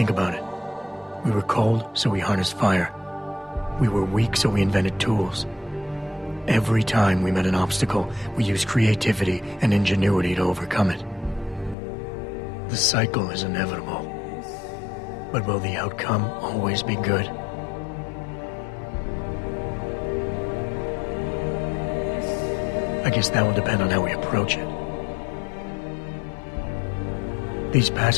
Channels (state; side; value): drops out; right; at 11.8 s